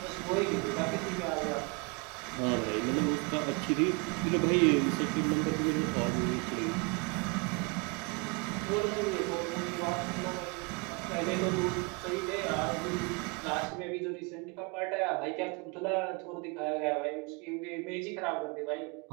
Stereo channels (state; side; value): quieter; left; 30.7 dB